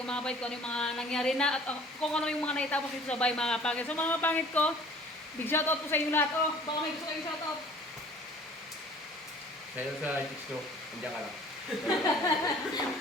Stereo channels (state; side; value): normal; both; correlation 0.49